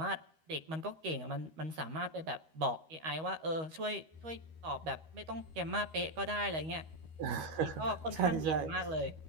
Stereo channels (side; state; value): left; late; 13 ms